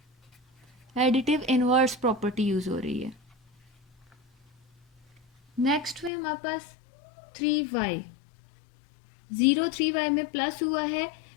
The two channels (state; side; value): drops out; right; at 6.1 s